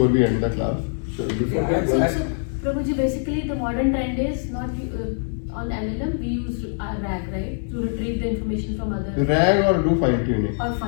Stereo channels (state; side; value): silent; right; 63 dB below the other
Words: we end the class. So Prabhuji, basically the modern trend is not on LLM, we use RAG, right? To retrieve the information from other. RAG or do fine tuning. Or